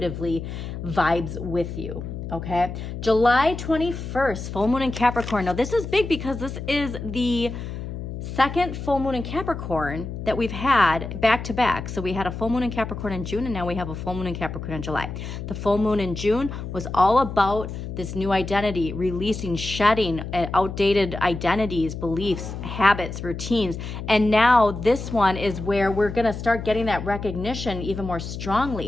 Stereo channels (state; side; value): noise; left; hum, 7 dB below the sound